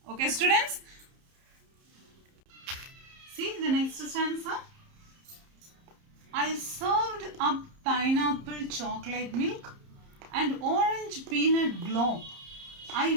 Okay, students? See the next stanza. I served up pineapple chocolate milk and orange peanut globe. I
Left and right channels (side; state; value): left; late; 30 ms